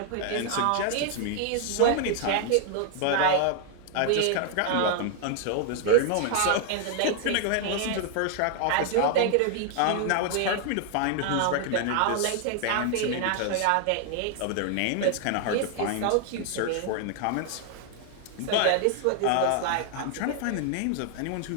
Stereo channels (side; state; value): both; different; correlation 0.00